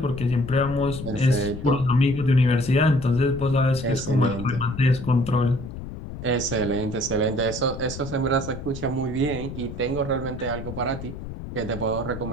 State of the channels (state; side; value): noise; left; rumble, 10 dB below the sound